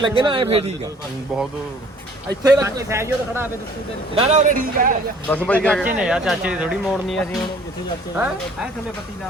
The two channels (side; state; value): both; normal; correlation 0.54